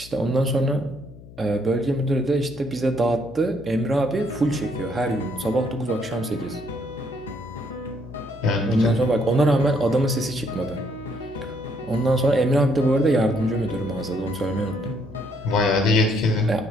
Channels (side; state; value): left; noise; hum, 19 dB below the sound